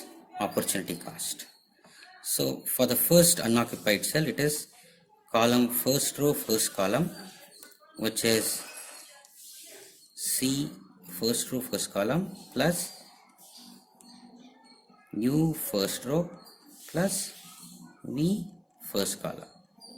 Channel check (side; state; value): both; identical; correlation 1.00